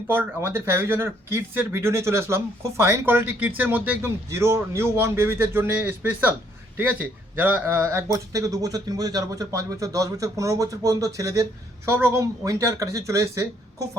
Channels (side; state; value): both; normal; correlation 0.67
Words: পর আমাদের ফ্যাভিজনের কিডসের ভিডিও নিয়ে চলে আসলাম। খুব ফাইন কোয়ালিটি কিডসের মধ্যে একদম জিরো নিউ বর্ন বেবিদের জন্য স্পেশাল, ঠিক আছে? যারা 1 বছর থেকে 2 বছর 3 বছর 4 বছর 5 বছর 10 বছর 15 বছর পর্যন্ত ছেলেদের সব রকম উইন্টার কালেকশন চলে এসছে। খুব